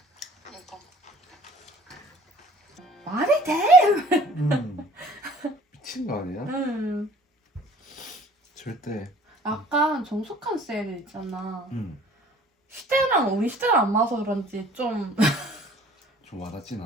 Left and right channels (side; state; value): both; normal; correlation 0.52